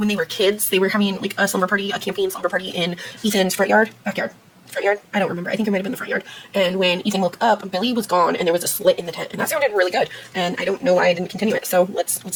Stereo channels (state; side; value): identical; both; correlation 1.00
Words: they were kids. They were having like a slumber party, a camping slumber party in Ethan's front yard. I don't remember. I think it might have been the front yard. And when Ethan woke up, Billy was gone and there was a slit in the tent. And that sounded really good. And I don't know why I didn't continue it. So let's